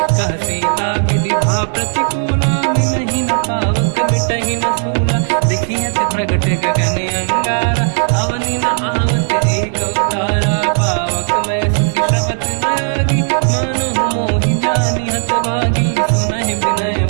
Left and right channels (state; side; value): silent; left; digital silence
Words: कह सीता विधि भा प्रतिकूला, मिलहि न पावक मिटहि न सूला, देखियत प्रगट गगन अंगारा, अवनि न आवत एक अवतारा, पावक मैं ससि श्रवत न आगी, मानो मोहि जानि हतभागी, सुनहि विनय